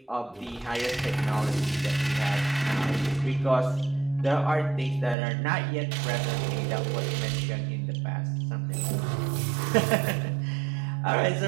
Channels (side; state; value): left; drops out; at 5.2 s